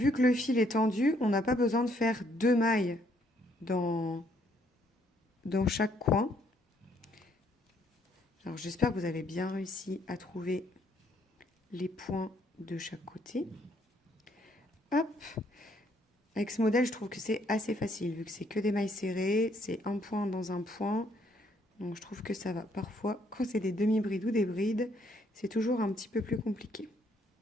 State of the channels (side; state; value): both; normal; correlation 0.68